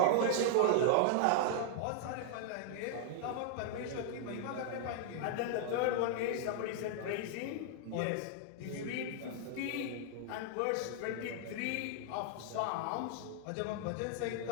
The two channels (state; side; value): different; both; correlation -0.01